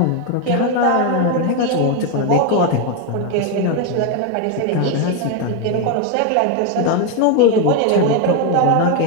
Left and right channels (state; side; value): different; both; correlation 0.01